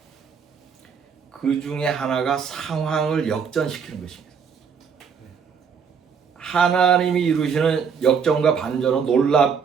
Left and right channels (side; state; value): left; quieter; 6.5 dB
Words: 그 중에 하나가 상황을 역전시키는 것입니다. 하나님이 이루시는 역전과 반전은